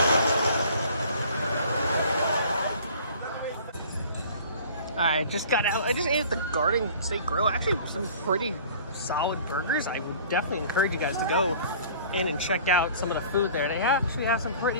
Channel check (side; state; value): both; inverted; correlation -0.47